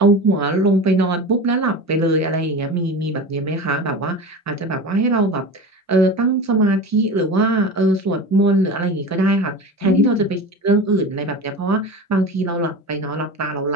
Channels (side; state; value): both; normal; correlation 0.30